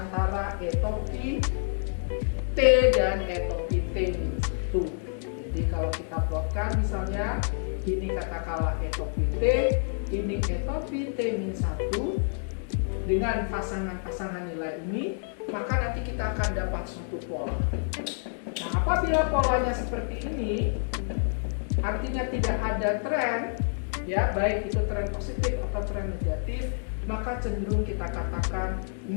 E topi T dan E topi T-1. Jadi kalau kita plotkan misalnya, ini katakanlah E topi T, ini E topi T-1 dengan pasangan-pasangan nilai ini, maka nanti kita akan dapat suatu pola. Nah, apabila polanya seperti ini, artinya tidak ada tren, ya baik itu tren positif atau tren negatif, maka cenderung kita katakan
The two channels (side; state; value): right; silent; digital silence